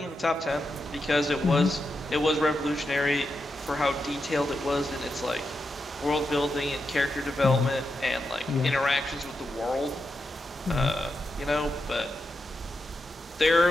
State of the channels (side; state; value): both; normal; correlation 0.87